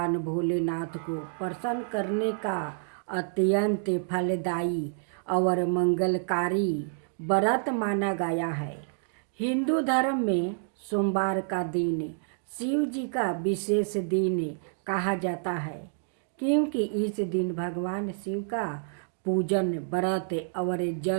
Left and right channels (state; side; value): silent; left; digital silence